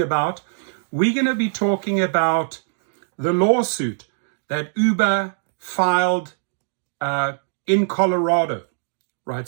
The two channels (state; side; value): silent; left; digital silence